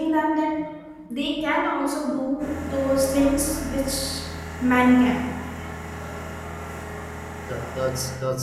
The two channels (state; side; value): identical; both; correlation 1.00